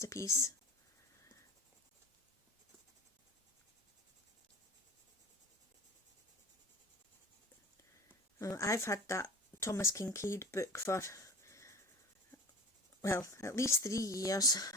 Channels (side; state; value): both; normal; correlation 0.35